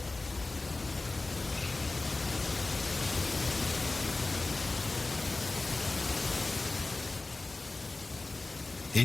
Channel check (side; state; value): right; quieter; 3.3 dB